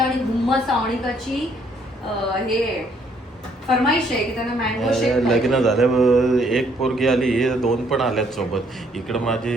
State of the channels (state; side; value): normal; both; correlation 0.67